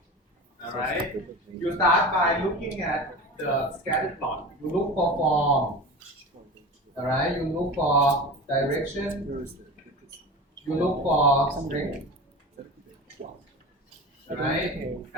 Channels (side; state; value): both; normal; correlation 0.31